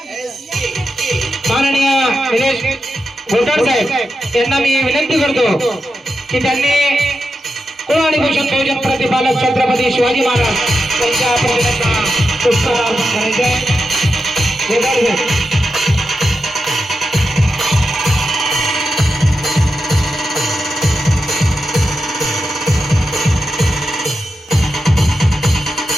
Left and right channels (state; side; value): normal; both; correlation 0.88